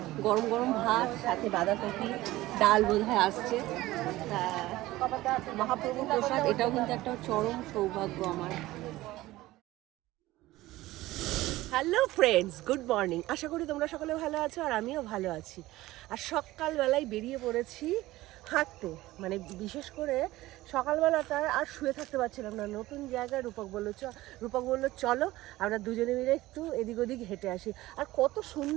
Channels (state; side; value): quieter; left; 17.5 dB